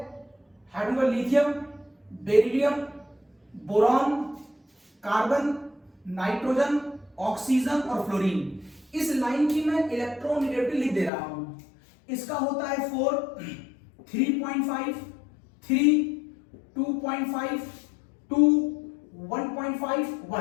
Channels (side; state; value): right; drops out; at 11.1 s